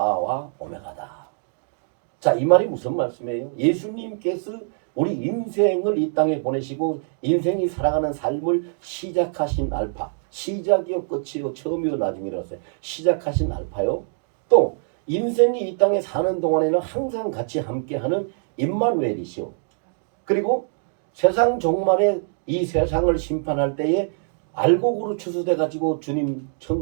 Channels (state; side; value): silent; left; digital silence